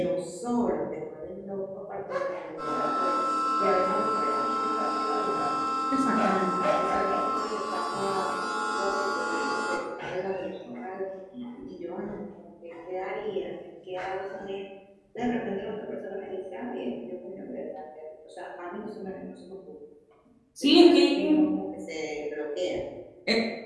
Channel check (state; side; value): identical; both; correlation 1.00